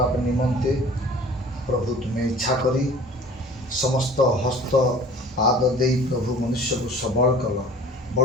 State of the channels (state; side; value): normal; both; correlation 0.46